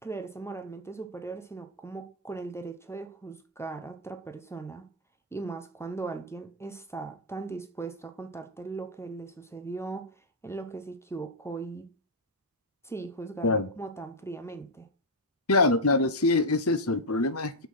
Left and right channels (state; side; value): normal; both; correlation -0.04